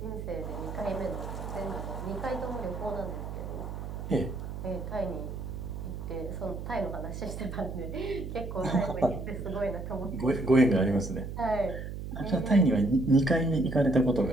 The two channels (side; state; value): right; noise; hum, 7 dB below the sound